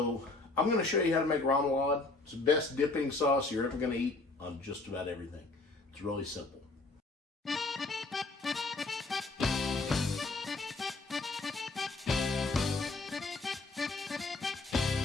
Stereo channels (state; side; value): quieter; right; 3.4 dB